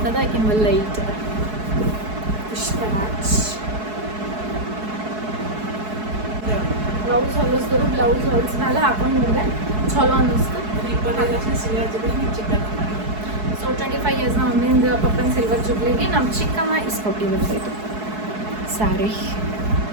ಅದ, ಆಕಿನ ಲೈಟ್ ಅದ. ಪುಷ್ಪರಾಜ್ ಬ್ಲೌಸ್ ಹೊಲಿಸಿದ್ರು. ಬ್ಲೌಸ್ ಹೊಲಿಸ್ಮೇಲೆ ಹಾಕೊಂಡು ನೋಡಿದೆ ಚಲೋ ಅನ್ನಿಸ್ತು. ಸೊ 25 ಇಯರ್ಸ್ ನಮ್ಮ ಮಮ್ಮಿಂದ ಪಪ್ಪನ ಸಿಲ್ವರ್ ಜುಬ್ಲಿಗೆ ನಮ್ಮ ಚಿಕ್ಕಮ್ಮ ಇಸ್ಕೊಟ್ಟಿದ್ದು ಇದು ಸ್ಯಾರಿ.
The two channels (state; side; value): late; left; 4.7 ms